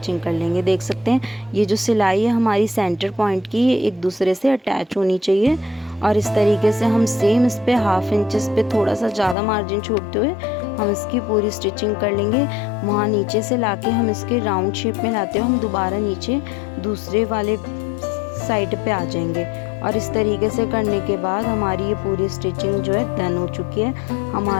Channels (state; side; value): drops out; right; at 9.3 s